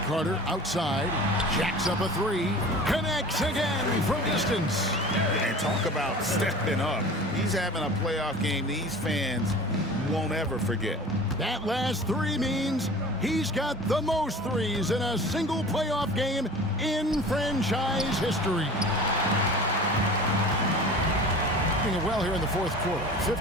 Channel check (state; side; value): normal; both; correlation 0.40